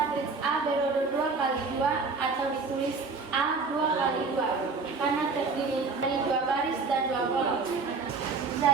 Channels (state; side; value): quieter; left; 4.3 dB